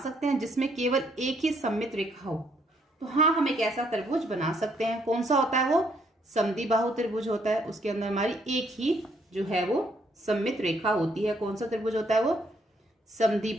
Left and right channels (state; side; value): normal; both; correlation 0.70